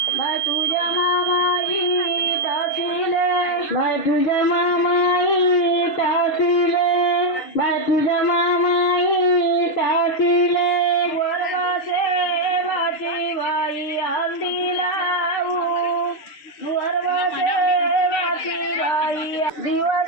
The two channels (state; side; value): late; right; 6.6 ms